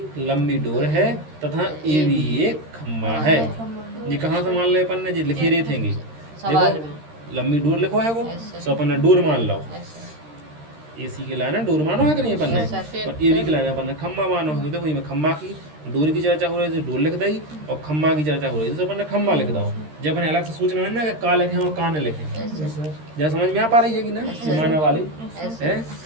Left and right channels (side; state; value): left; late; 13 ms